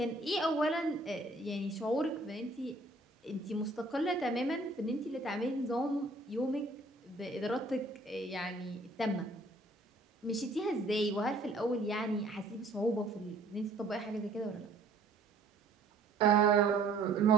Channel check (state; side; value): quieter; left; 3.0 dB